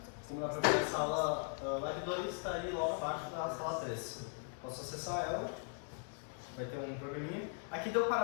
como dá para ver a sala lab 2 está ali logo abaixo da sala 3. Posso acessar ela, vai ter um programinha. Aqui deu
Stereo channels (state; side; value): silent; right; 52 dB below the other